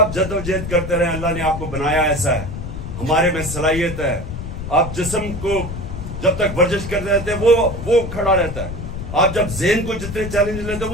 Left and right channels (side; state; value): left; noise; rumble, 7 dB below the sound